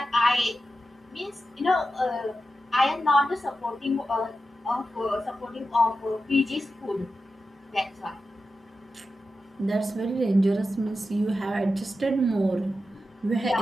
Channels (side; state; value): both; normal; correlation 0.91